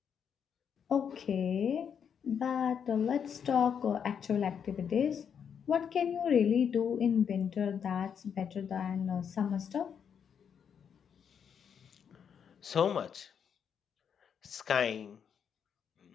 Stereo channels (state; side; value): quieter; right; 7.5 dB